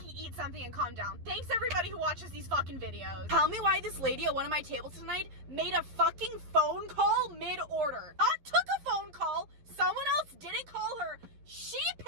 eat something and calm down. Thanks everybody who watches these fucking videos. Tell me why this lady at one of my tables tonight made a fucking phone call mid-order. Not took a phone call, someone else didn't call her, she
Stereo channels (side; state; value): left; late; 11 ms